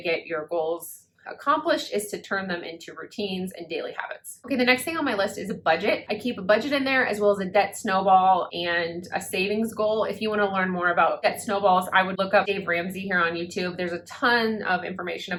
get your goals accomplished, is to turn them into routines and daily habits. Okay, the next thing on my list is a budget. I keep a budget in there, as well as a debt snowball and a savings goal. If you want to learn more about debt snowballs, I would look up Dave Ramsey here on YouTube. There's a ton of information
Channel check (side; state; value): both; identical; correlation 1.00